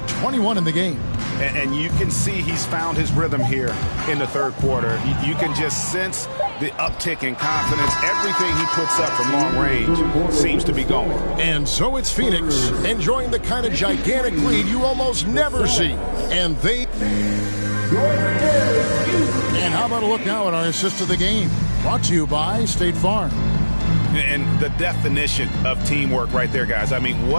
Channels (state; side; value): inverted; both; correlation -1.00